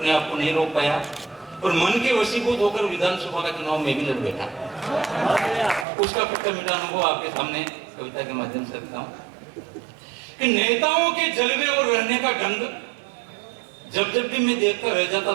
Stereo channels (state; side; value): drops out; left; at 5.9 s